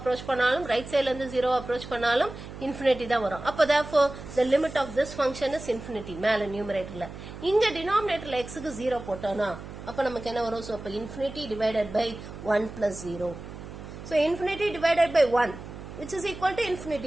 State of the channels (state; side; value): noise; right; hum, 12 dB below the sound